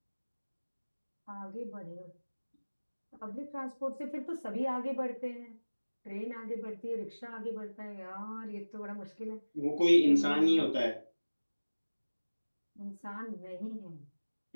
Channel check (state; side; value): inverted; both; correlation -1.00